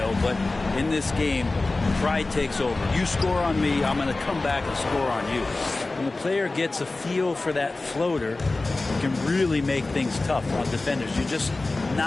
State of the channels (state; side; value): quieter; right; 3.2 dB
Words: but in this game, pride takes over. You score on me, I'm going to come back and score on you. When the player gets a feel for that floater, it can really make things tough on defenders. You're just